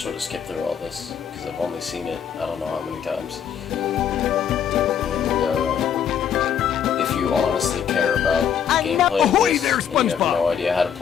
would have skipped through all this, because I've only seen it I don't know how many times. If you honestly care about gameplay, Ahoy there, and you have SpongeBob. no idea how to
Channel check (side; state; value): right; quieter; 8.3 dB